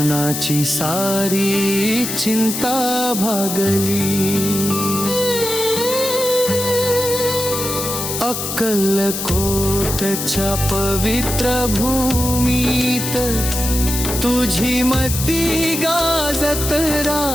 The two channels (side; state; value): left; noise; hiss, 4 dB below the sound